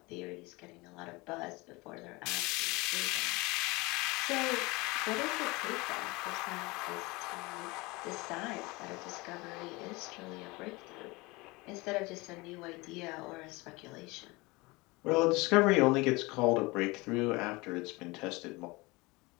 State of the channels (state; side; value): quieter; right; 24.0 dB